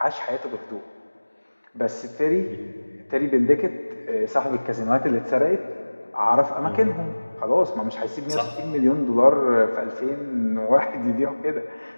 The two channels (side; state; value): both; inverted; correlation -1.00